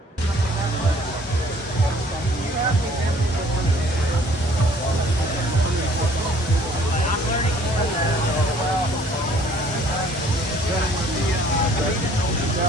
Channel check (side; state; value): both; normal; correlation 0.57